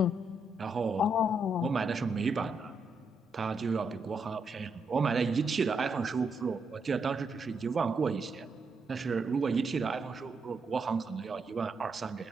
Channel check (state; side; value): normal; both; correlation 0.80